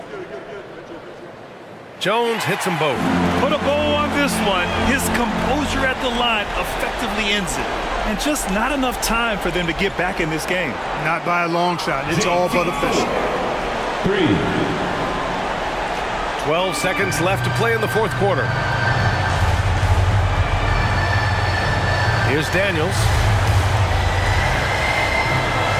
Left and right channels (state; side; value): identical; both; correlation 1.00